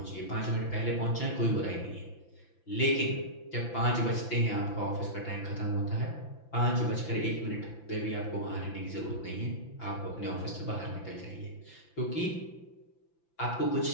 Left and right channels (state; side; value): late; right; 5.9 ms